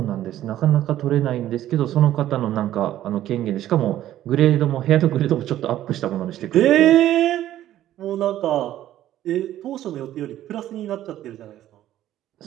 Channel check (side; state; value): left; quieter; 12.9 dB